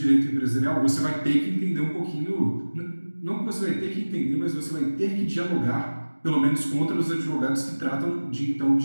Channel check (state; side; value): inverted; both; correlation -1.00